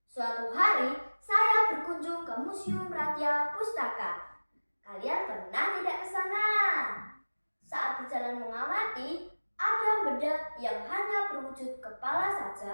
Suatu hari saya berkunjung ke Museum Ratia Pustaka. Kalian pernah tidak ke sana? Saat berjalan mengamati, ada benda yang hanya berwujud kepala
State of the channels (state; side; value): inverted; both; correlation -1.00